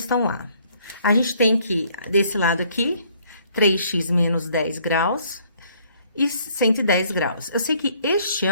A. A gente tem que, desse lado aqui, 3x menos 10 graus... e 110 graus. Eu sei que este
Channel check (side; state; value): both; inverted; correlation -0.63